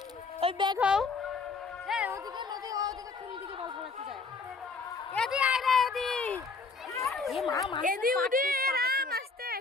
ওই ব্যাগ হও। ওদিকে নদী, ওদিকে কোন দিকে বল ফলাতে যায়? এদি আয় রে এদি। এ মা মা এদি উঠি রাম আসতে।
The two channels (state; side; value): quieter; right; 4.3 dB